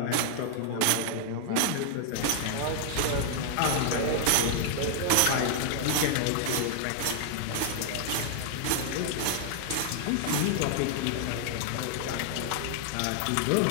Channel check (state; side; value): different; both; correlation 0.00